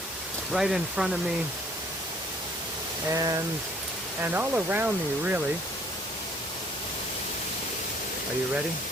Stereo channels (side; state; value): both; normal; correlation 0.58